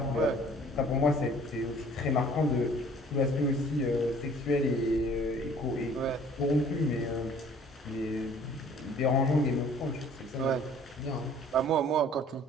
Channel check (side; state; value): both; normal; correlation 0.53